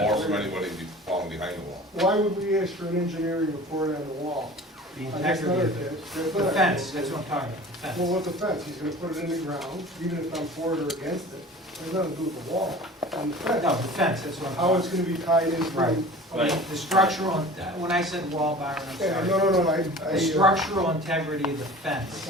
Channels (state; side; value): normal; both; correlation 0.41